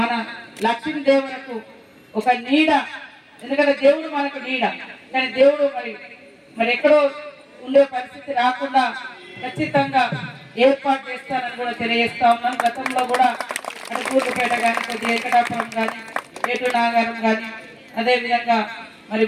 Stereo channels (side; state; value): both; identical; correlation 1.00